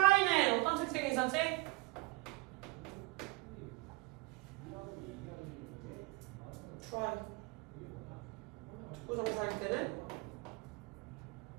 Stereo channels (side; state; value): left; quieter; 24.3 dB